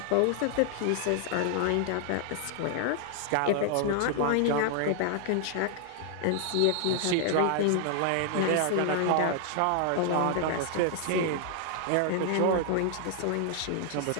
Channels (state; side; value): different; both; correlation 0.00